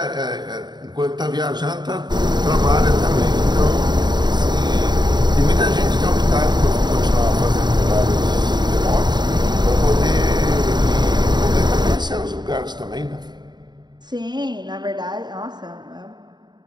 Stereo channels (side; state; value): left; late; 0.21 ms